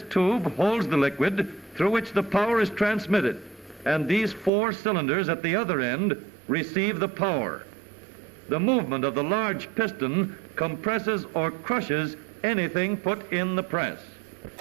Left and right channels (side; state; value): left; drops out; at 4.5 s